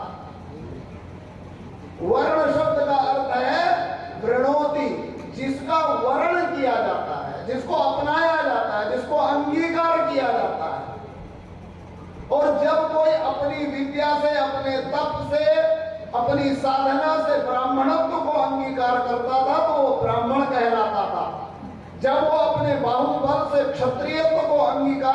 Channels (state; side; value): identical; both; correlation 1.00